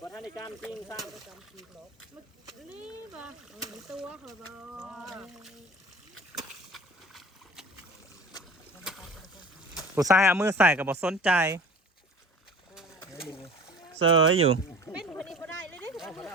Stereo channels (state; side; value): normal; both; correlation 0.42